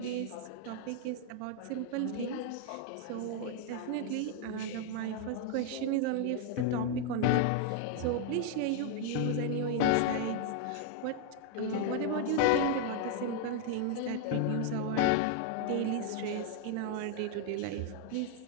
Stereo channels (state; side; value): different; both; correlation 0.00